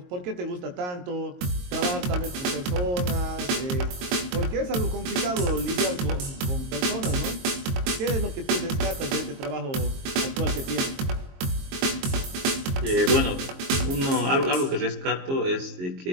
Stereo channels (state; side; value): late; left; 22 ms